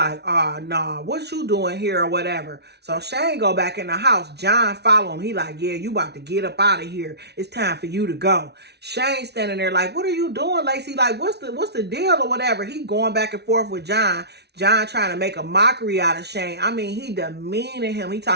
oh, nah, what you doing here or whatever. So Shane go back in the house. John follow him. He like, yeah, you about to get up out of here. It's time for you to go. Shane standing there like, what are you doing, Lacey? Like, what's the deal or whatever? He going back and forth with John. John trying to make a mockery out of Shane. I mean, he demeaning him. He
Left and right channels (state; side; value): late; left; 0.49 ms